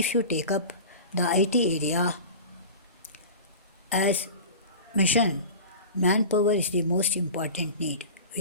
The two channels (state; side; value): inverted; both; correlation -0.34